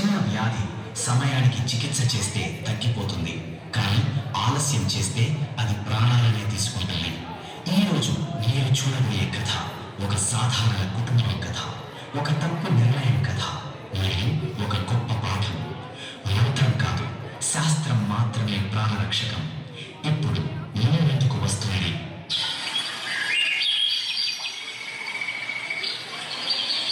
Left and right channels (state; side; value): identical; both; correlation 1.00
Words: వ్యాధి సమయానికి చికిత్స చేస్తే తగ్గిపోతుంది, కానీ ఆలస్యం చేస్తే అది ప్రాణాలనే తీసుకుంటుంది. ఈరోజు మీరు చూడబోయే కథ ఒక సాధారణ కుటుంబం కథ, ఒక తప్పు నిర్ణయం కథ మరియు ఒక గొప్ప పాఠం. మంత్రం కాదు, శాస్త్రం మాత్రమే ప్రాణరక్షకం. ఇప్పుడు మీ ముందుకు వస్తుంది